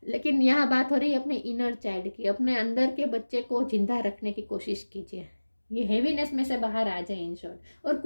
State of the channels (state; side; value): inverted; both; correlation -1.00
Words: लेकिन यहाँ बात हो रही है अपने इनर चाइल्ड की, अपने अंदर के बच्चे को जिंदा रखने की कोशिश कीजिए। ये हेवीनेस में से बाहर आ जाए इन शॉर्ट, और